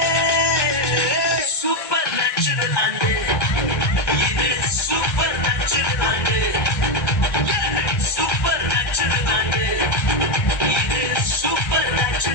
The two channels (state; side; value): late; right; 1.2 ms